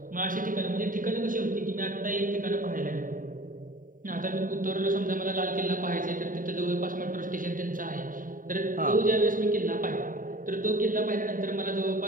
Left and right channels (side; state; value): left; late; 0.39 ms